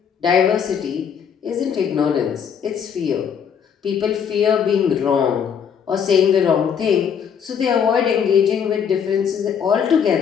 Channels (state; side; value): quieter; right; 7.6 dB